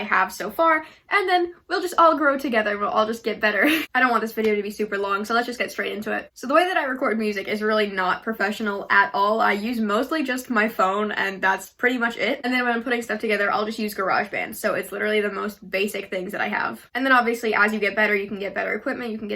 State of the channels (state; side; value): identical; both; correlation 1.00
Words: have so far, and then we'll just all grow together and we'll all just get better. I don't want this video to be super long, so let's just get straight into it. So the way that I record music is really not professional at all. I use mostly just my phone, and that's pretty much it. And then when I'm putting stuff together, I'll just use GarageBand. So it's literally the most basic things that I have. And then obviously, as you get better, you can get better equipment. You can